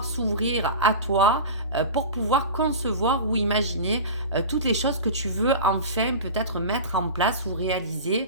s'ouvrir à toi pour pouvoir concevoir ou imaginer toutes les choses que tu veux enfin peut-être mettre en place ou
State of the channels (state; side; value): inverted; both; correlation -0.30